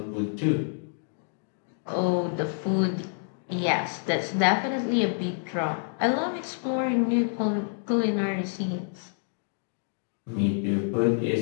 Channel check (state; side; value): silent; right; digital silence